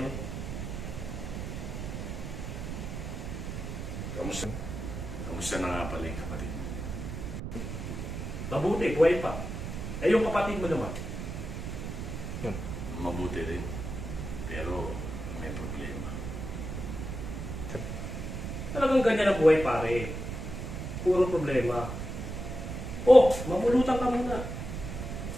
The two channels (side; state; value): right; noise; rumble, 6 dB below the sound